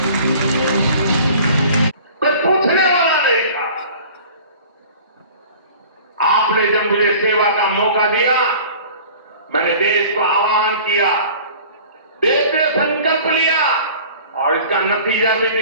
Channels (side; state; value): both; inverted; correlation -0.45